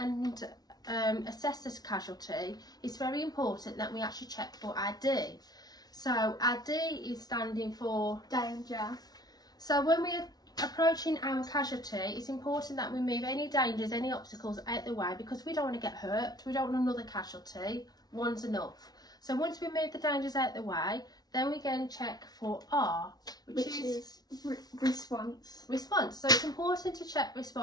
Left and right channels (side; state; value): right; late; 0.19 ms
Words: assess this casualty, it's very important that we actually check for ID. So our D is standing for danger. So when we're approaching our casualty, it's important that we move any dangers, any obstacles out the way, because we don't want to get hurt. We don't want another casualty. One's enough. So once we move the dangers out the way, then we go and check for R, which is response. Response. So it's important to check